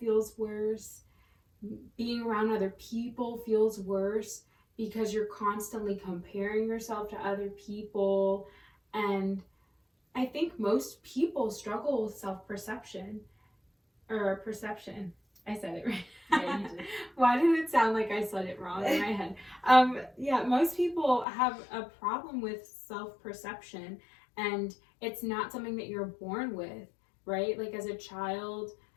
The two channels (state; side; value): drops out; right; at 21.2 s